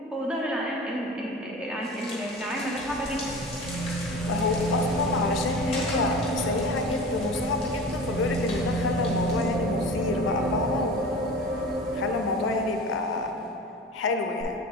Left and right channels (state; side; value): normal; both; correlation 0.35